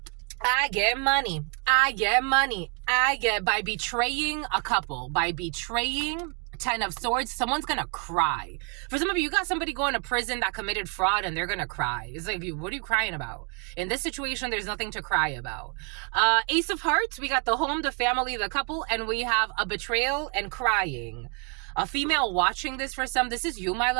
I get money. I get money. I get, by betraying a couple, by betraying 10 of Swords, someone's gonna cry. For some of you got somebody going to prison that committed fraud and they're gonna cry. It's like, what are you crying about? In this situation, there's nothing to cry about. Ace of Hearts, we got the home, the family, the couple, and we have a betrayal and crying. A female watching this for some. This is you, my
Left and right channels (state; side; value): quieter; left; 37.7 dB